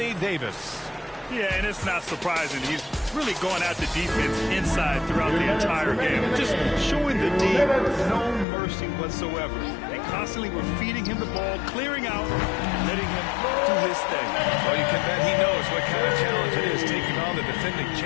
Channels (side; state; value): right; drops out; at 8.5 s